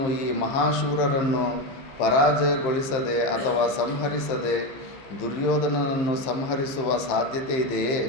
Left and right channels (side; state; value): right; late; 15 ms